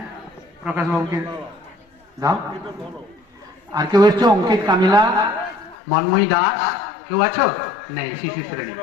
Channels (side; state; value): right; drops out; at 5.8 s